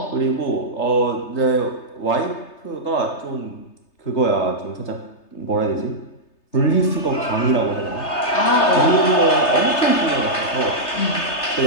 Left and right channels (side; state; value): right; late; 3.3 ms